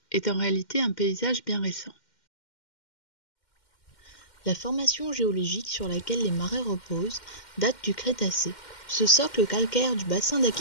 est en réalité un paysage bien récent. La formation géologique sur laquelle les marais reposent date du Crétacé. Ce socle calcaire du bassin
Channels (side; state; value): right; late; 2.1 ms